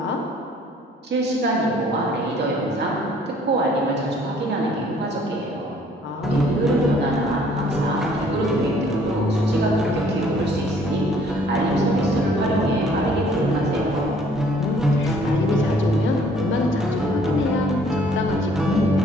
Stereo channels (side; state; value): both; normal; correlation 0.59